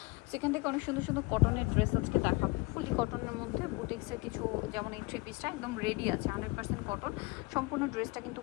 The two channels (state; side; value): quieter; right; 24.6 dB